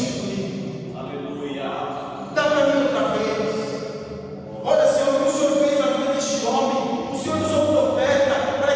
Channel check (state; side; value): identical; both; correlation 1.00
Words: Aleluia. Dá para mim outra vez. Olha, Senhor, o que o Senhor fez na vida deste homem. O Senhor usou o profeta para